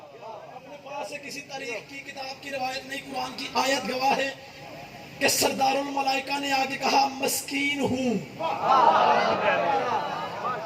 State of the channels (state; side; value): identical; both; correlation 1.00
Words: اپنے پاس سے کسی تاریخ کی کتاب کی روایت نہیں قرآن کی آیت گواہ ہے کہ سردار الملائکہ نے آگے کہا مسکین ہوں.